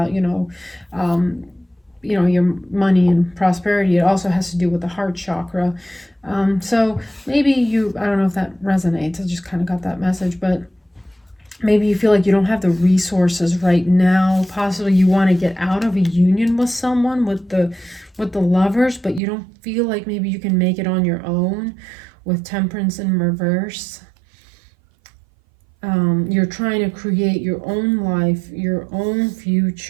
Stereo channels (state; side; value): drops out; left; at 19.2 s